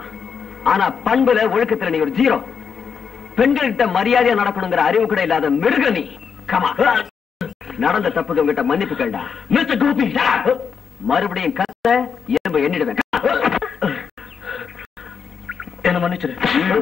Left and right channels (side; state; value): right; quieter; 6.5 dB